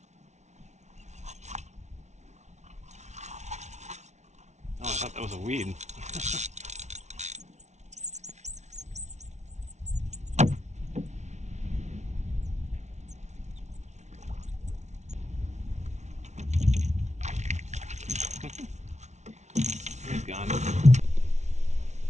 Oh, I thought that was a weed. He's gone.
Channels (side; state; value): left; late; 0.33 ms